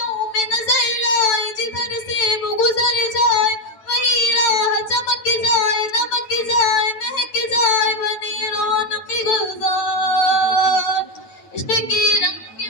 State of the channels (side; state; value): right; late; 9.1 ms